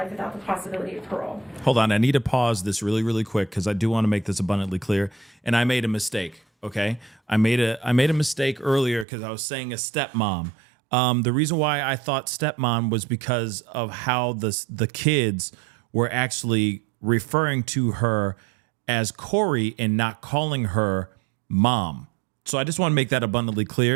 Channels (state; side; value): drops out; left; at 9.1 s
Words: without the possibility of parole. Hold on, I need to pause this really, really quick because I do want to make this abundantly clear. And I made a mistake, okay? I made a mistake earlier because I was saying a stepmom. The reason why I thought stepmom was because of how the kids were actually referring to her as Kouri and not calling her mom. So I just want to make that abundantly